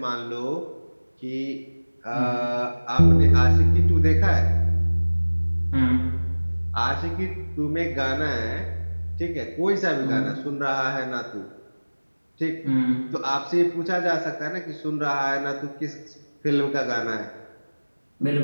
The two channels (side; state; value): both; inverted; correlation -1.00